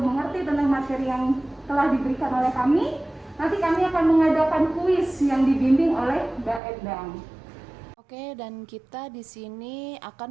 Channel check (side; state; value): left; drops out; at 6.6 s